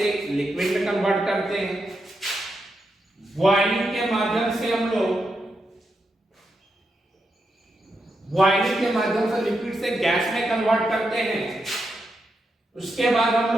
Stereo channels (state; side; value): normal; both; correlation 0.84